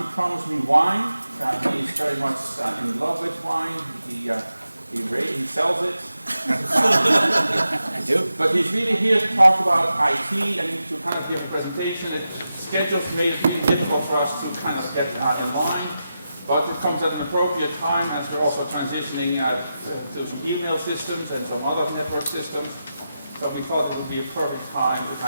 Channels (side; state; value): both; inverted; correlation -0.90